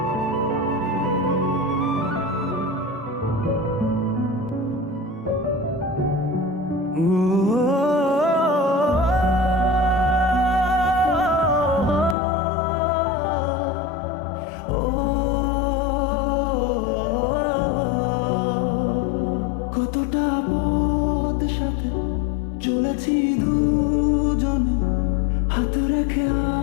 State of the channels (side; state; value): right; drops out; at 12.2 s